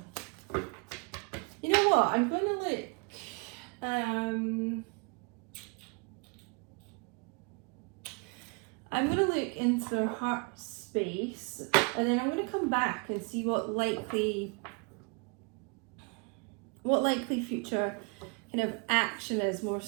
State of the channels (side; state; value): left; quieter; 32.6 dB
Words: You know what? I'm going to look. I'm going to look into their heart space, and then I'm going to come back and see what likely future kind of action is more